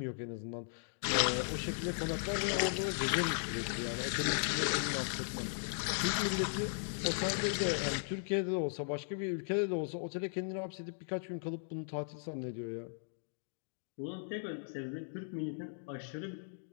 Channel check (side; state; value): right; silent; digital silence